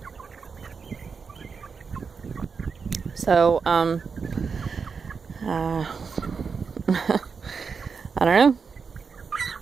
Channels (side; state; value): left; quieter; 5.5 dB